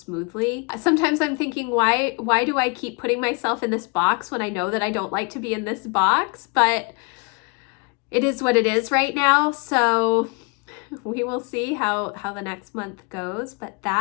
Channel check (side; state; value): right; quieter; 32.0 dB